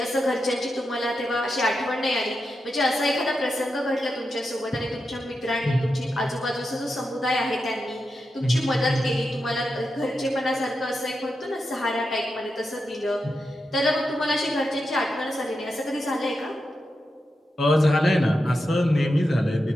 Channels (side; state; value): both; normal; correlation 0.88